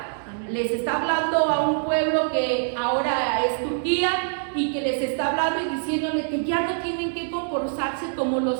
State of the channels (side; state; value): left; silent; digital silence